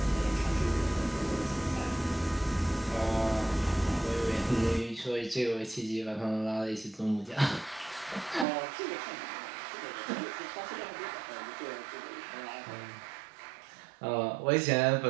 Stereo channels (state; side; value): drops out; left; at 8.5 s